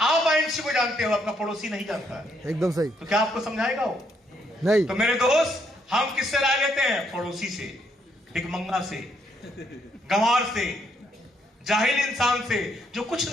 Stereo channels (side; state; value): both; normal; correlation 0.73